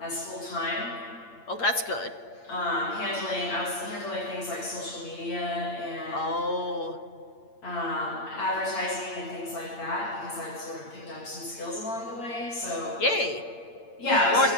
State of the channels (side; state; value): right; late; 8.7 ms